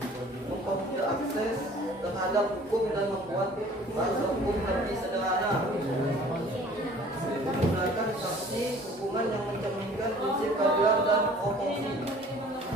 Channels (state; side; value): normal; both; correlation 0.50